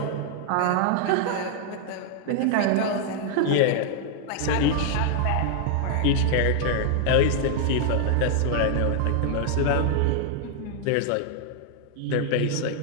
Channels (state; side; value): different; both; correlation 0.00